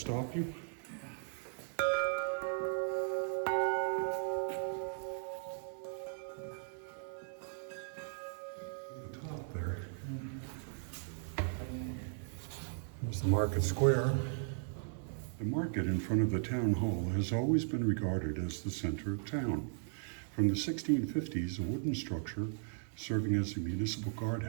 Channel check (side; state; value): left; silent; 53 dB below the other